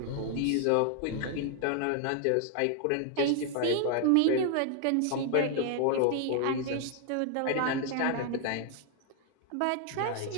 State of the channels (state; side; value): different; both; correlation 0.00